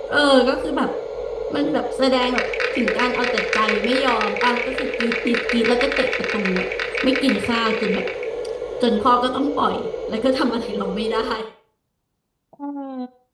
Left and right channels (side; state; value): both; identical; correlation 1.00